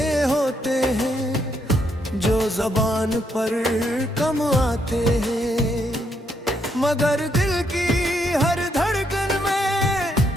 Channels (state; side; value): normal; both; correlation 0.75